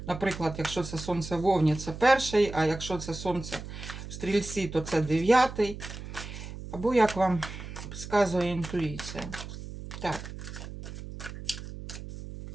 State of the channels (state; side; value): noise; right; hum, 11 dB below the sound